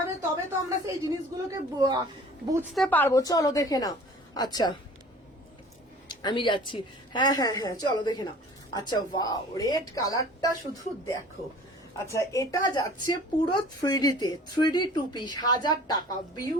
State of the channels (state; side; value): normal; both; correlation 0.46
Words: তবে তো আমরা সেই জিনিসগুলোকে বুঝতে পারবো। চলো দেখে নাও। আচ্ছা আমি যাচ্ছি, হ্যাঁ হ্যাঁ হ্যাঁ চলো দেখে নাও। আচ্ছা ওয়াও রেড কালারটা শুধু দেখো। আচ্ছা এটা যাচ্ছে পুরো 3D তে, 3D 2 পিস 1000 টাকা,